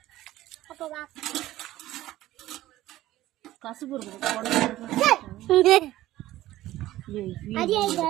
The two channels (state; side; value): quieter; left; 15.4 dB